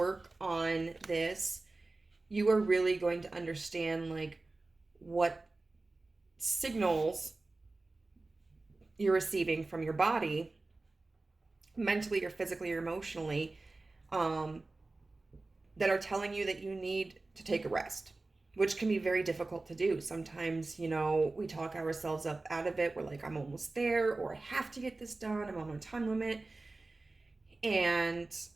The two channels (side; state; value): left; quieter; 3.3 dB